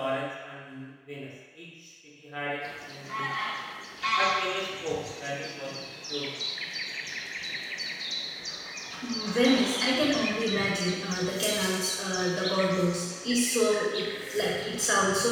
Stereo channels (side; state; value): both; identical; correlation 1.00